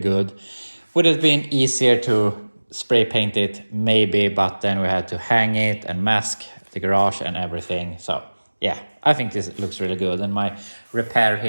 Would it have been easier to spray paint it? Maybe, but then we had to hang it and mask the garage and everything. So yeah, I think this looks really good. And my repair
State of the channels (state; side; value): inverted; both; correlation -1.00